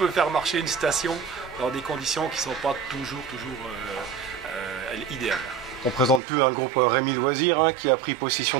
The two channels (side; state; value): left; drops out; at 6.2 s